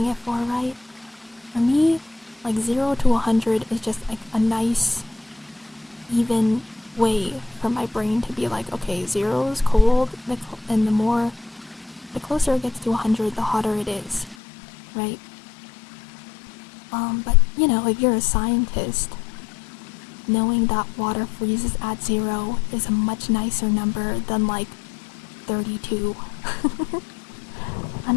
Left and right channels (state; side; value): drops out; right; at 14.4 s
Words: it for, right? For me, like 0 to 100 is just like a nice, even way for my brain to be like, okay, 0 is cold, and the closer it gets to 100, the hotter it is, right? But you know, if you're a scientist, knowing that water freezes at 0 is a much nicer number than like 32.